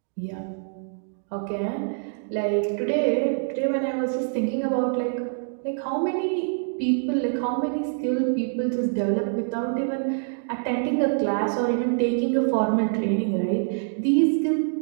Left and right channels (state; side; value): silent; left; digital silence